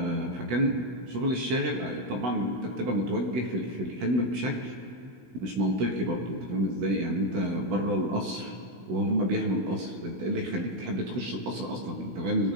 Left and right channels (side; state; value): left; late; 16 ms